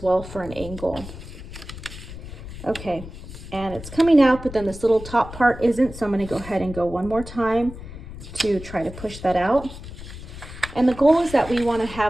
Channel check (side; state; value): left; noise; rumble, 13 dB below the sound